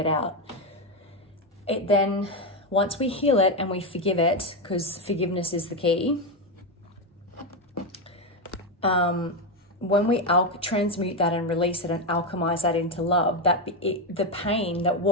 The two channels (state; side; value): normal; both; correlation 0.08